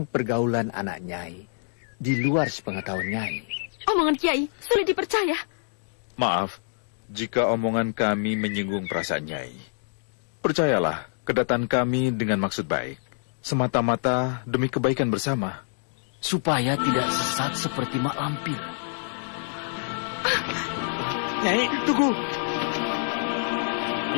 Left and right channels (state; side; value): silent; right; digital silence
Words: pergaulan anak Nyai di luar sepengetahuan Nyai. Omongan Kiai sulit dipercaya. Maaf, jika omongan kami menyinggung perasaan Nyai. Percayalah, kedatangan kami dengan maksud baik. Semata-mata demi kebaikan bersama. Supaya tidak sesat seperti Mak Lampir. Nyai, tunggu.